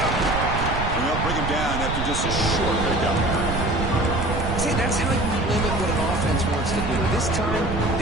And they'll bring him down after just a short pickup. See, that's how you limit what an offense wants to do. This time,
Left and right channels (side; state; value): right; noise; rumble, 3 dB below the sound